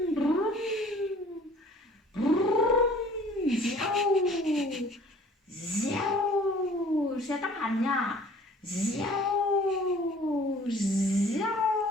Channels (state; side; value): normal; both; correlation 0.52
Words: Xe tốc hành nha.